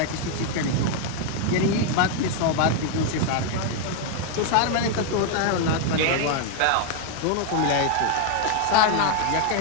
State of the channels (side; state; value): both; different; correlation 0.01